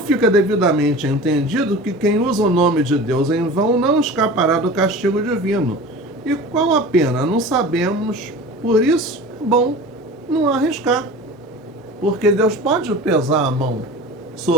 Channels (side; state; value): both; normal; correlation 0.37